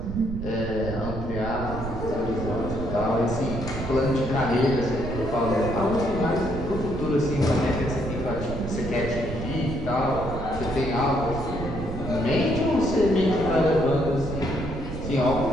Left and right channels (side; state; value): right; noise; rumble, 7 dB below the sound